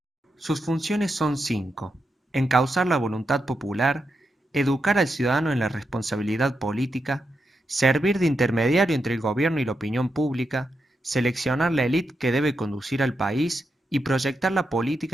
Sus funciones son 5: encauzar la voluntad popular, educar al ciudadano en la responsabilidad política, servir de intermediario entre el gobierno y la opinión pública, seleccionar la élite que debe conducir al país y proyectar la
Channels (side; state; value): both; normal; correlation 0.85